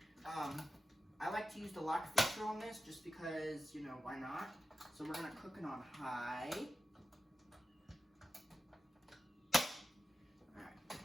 I like to use the lock feature on this just because, you know, why not? So we're going to cook it on high. Alright,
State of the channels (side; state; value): both; normal; correlation 0.92